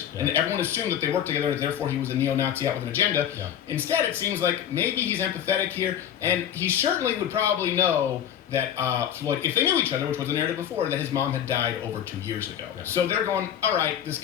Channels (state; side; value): quieter; right; 9.9 dB